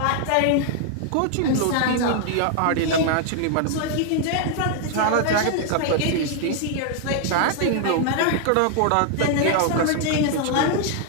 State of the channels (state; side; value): different; both; correlation 0.00